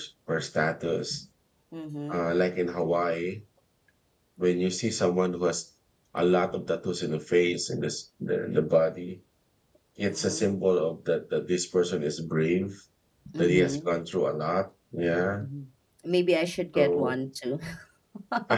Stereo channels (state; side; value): identical; both; correlation 1.00